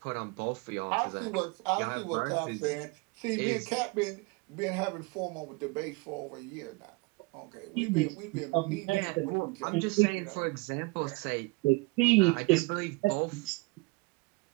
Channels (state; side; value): quieter; left; 26.5 dB